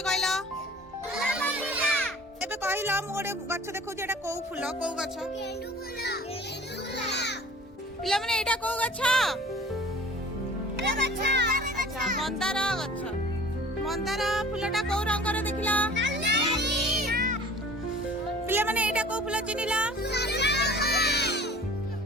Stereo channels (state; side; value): normal; both; correlation 0.46